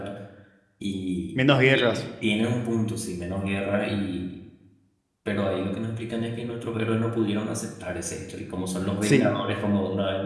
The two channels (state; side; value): identical; both; correlation 1.00